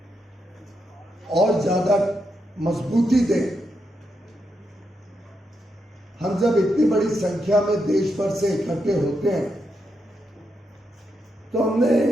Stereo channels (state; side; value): normal; both; correlation 0.83